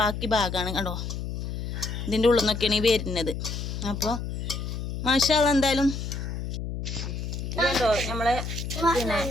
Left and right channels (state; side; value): noise; left; hum, 5 dB below the sound